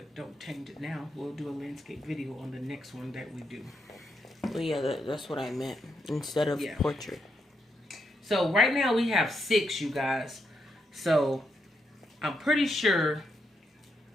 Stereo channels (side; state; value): both; normal; correlation 0.81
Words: don't change it now. We'll do a landscape video on the next one that we do. Well, yeah, that's what I meant. Instead of portrait. So right now we have 6, you guys. So I'm pretty sure